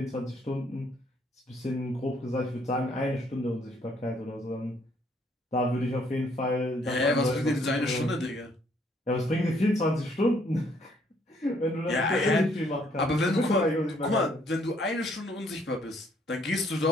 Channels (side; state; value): both; normal; correlation 0.66